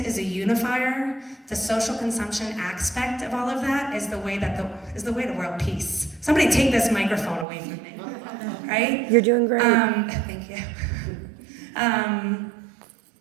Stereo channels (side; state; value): left; drops out; at 7.5 s